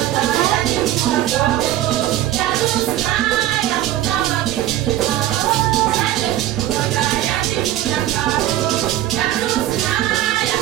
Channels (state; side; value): quieter; left; 13.6 dB